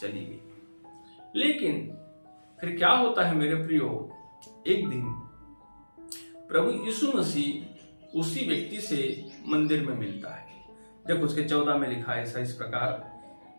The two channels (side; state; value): both; inverted; correlation -1.00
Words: चली गई। लेकिन फिर क्या होता है मेरे प्रियो, एक दिन प्रभु यीशु मसीह उसी व्यक्ति से मंदिर में मिलता है। देखो उसके 14 में लिखा है ऐसा इस प्रकार,